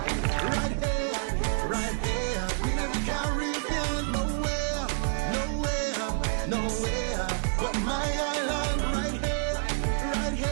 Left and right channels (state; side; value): silent; left; 59 dB below the other